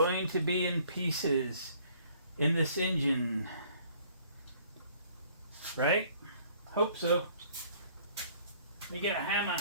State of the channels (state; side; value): inverted; both; correlation -0.58